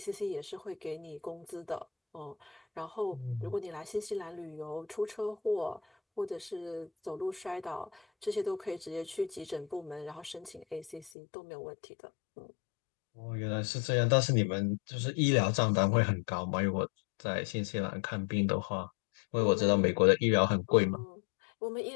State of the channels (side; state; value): right; drops out; at 11.1 s